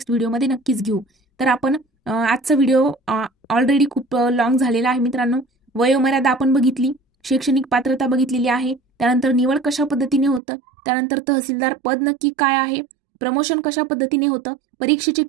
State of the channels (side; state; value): left; drops out; at 10.4 s